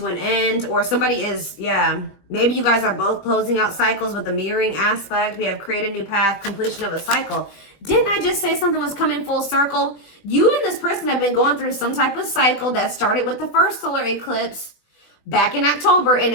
an end. Or somebody is, yeah. Maybe you guys are both closing out cycles with the mirroring aspect. We have create a new path, completion of a cycle. Didn't I just say something was coming full circle? You and this person have been going through some type of cycle that started with the first solar eclipse back in October, and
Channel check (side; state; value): right; late; 20 ms